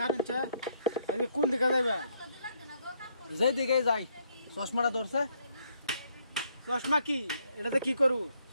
কারণ চা আজকে কোন দিকে যাইবা যেই দিকে যাই চশমাটা ধরছে চশমা কি এটাতে কি করু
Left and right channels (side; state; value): both; inverted; correlation -0.71